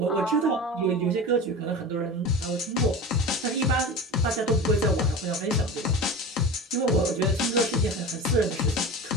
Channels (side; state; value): both; normal; correlation 0.31